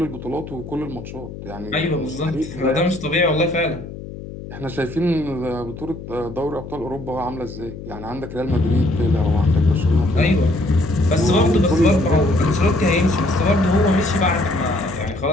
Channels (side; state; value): left; noise; hum, 12 dB below the sound